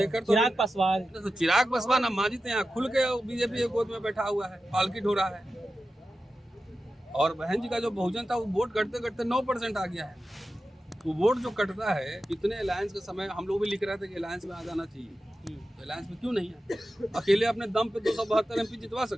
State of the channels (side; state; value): both; normal; correlation 0.93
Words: चिराग पासवान। तो चिराग पासवान अब मांझी यहाँ खुल के बीजेपी के गोद में बैठा हुआ है, पालकी ढो रहा है। और बहन जी का जो बहुजन था वो वोट करते करते 9% आ गया है। तो वोट जो कटता है, इतने अलायंस के समय हम लोग भी लिख रहे थे कि अलायंस में आ जाना चाहिए, तो अलायंस में क्यों नहीं है? अकेले अपने दम पे 272 एमपी जितवा